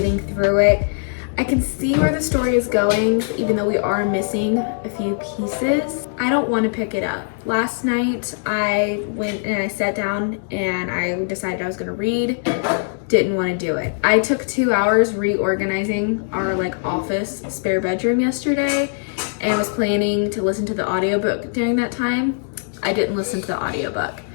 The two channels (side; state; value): right; silent; digital silence